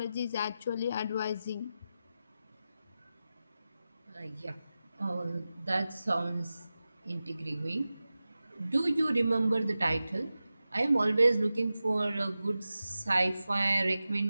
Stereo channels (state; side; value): inverted; both; correlation -0.94